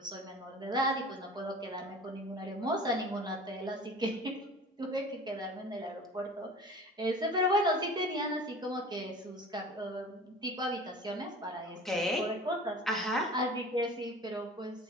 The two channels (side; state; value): both; normal; correlation 0.40